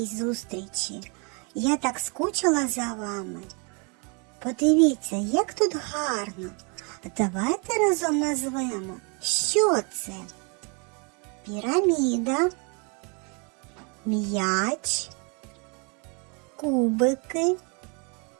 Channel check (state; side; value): quieter; left; 34.2 dB